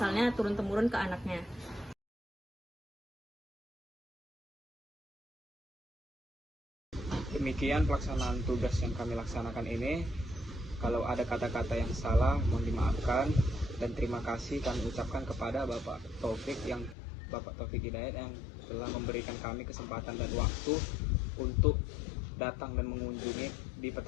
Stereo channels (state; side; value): drops out; right; at 16.9 s